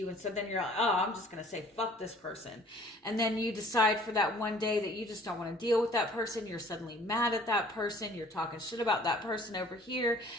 And so then you're like, oh, I'm just going to say, fuck this person. And then you decide for that one day that you just don't want to deal with that person. You're suddenly mad at that person. You're talking shit about that person over here.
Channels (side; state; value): both; normal; correlation 0.53